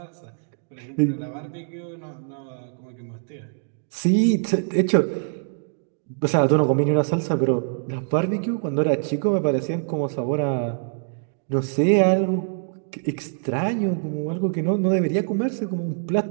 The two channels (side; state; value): left; silent; digital silence